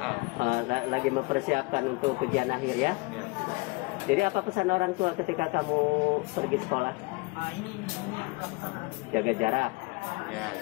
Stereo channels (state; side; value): quieter; right; 26.2 dB